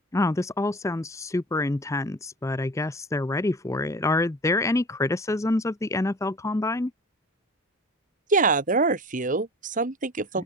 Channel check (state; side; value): normal; both; correlation 0.39